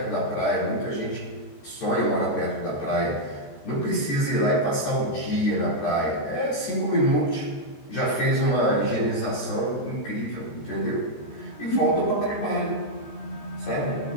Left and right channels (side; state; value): right; late; 14 ms